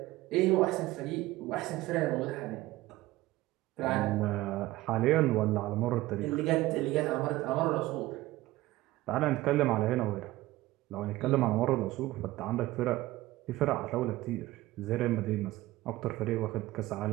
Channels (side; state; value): left; quieter; 17.6 dB